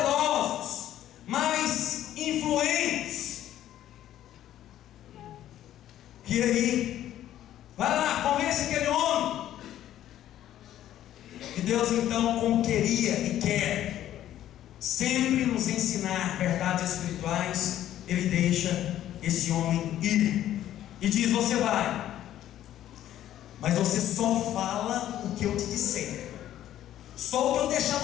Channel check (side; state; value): right; quieter; 12.3 dB